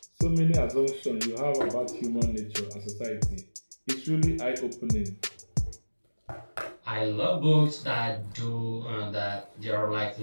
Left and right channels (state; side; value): inverted; both; correlation -1.00